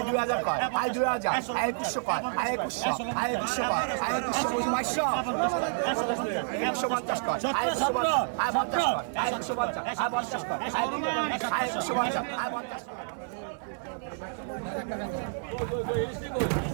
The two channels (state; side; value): silent; left; digital silence